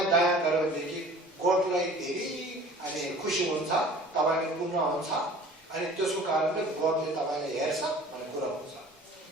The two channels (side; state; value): both; normal; correlation 0.46